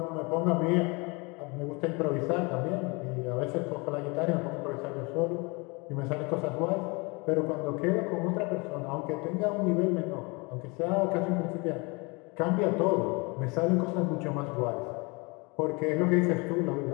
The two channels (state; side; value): quieter; right; 28.4 dB